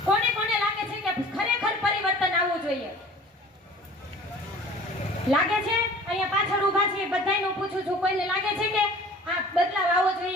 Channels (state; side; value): normal; both; correlation 0.46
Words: કોને લાગે છે કે ખરેખર પરિવર્તન આવવું જોઈએ? લાગે છે? અહીંયા પાછળ ઊભા છે બધાયનું પૂછું છું, કોઈને લાગે છે કે આ બદલાવ આવવો